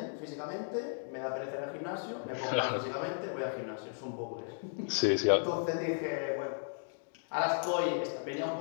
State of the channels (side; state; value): right; silent; digital silence